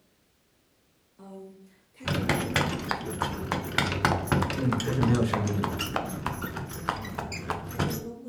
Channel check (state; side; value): identical; both; correlation 1.00